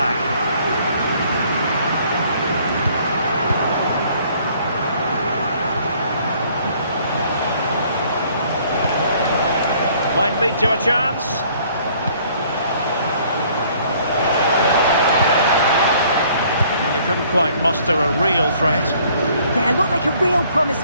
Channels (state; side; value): inverted; both; correlation -0.60